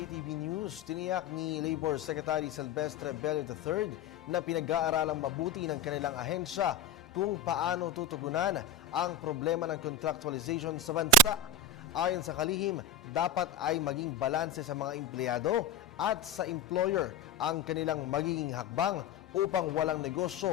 News, tiniyak ni Labor Secretary Silvestre Bello III na pinag-aaralang mabuti ng kanilang ahensya kung paano tutugunan ang problema ng contractualization sa bansa. Ayon sa kalihim, dapat ay maging balanse sa mga empleyado at sa employer ang kanilang magiging hakbang upang walang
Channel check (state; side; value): quieter; right; 4.2 dB